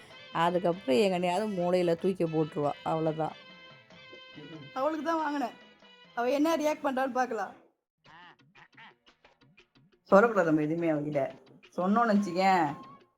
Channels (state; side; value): identical; both; correlation 1.00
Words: அதுக்கப்புறம் எங்கனையாவது மூளையில் தூக்கி போட்டுருவா. அவ்வளோதான். அவளுக்கு தான் வாங்கினேன். அவள் என்ன ரியாக்ட் பண்ணுறான்னு பார்க்கலாம். சொல்லக்கூடாது நம்ம எதுவுமே அவகிட்ட. சொன்னோன்னு வச்சுக்கேன்,